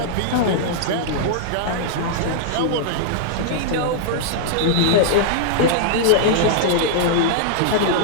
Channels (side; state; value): both; different; correlation -0.01